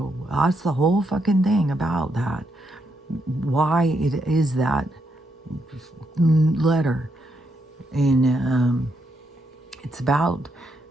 that's the whole fucking thing about that. Why it is that letter. And it's about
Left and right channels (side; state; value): both; normal; correlation 0.79